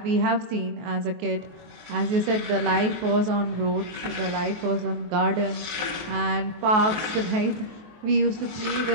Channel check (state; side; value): late; left; 23 ms